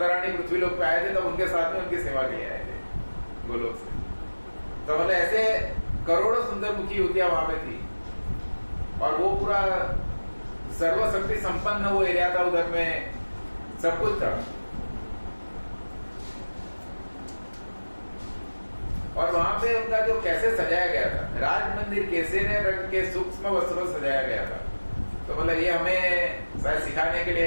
रानी पृथ्वी लोक पे आए थे तब उनके साथ में उनकी सेवा के लिए आए थे गोलोक से। तो मतलब ऐसे करोड़ों सुंदर मुखी युवतियां वहां पे थी और वो पूरा सर्वशक्ति संपन्न वो एरिया था, उधर में सब कुछ था। और वहां पे उनका जो कैसे सजाया गया था, राज मंदिर केसरी रंग के सूक्ष्म वस्त्रों से सजाया गया था। तो मतलब ये हमें शायद सिखाने के लिए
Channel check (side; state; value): both; inverted; correlation -1.00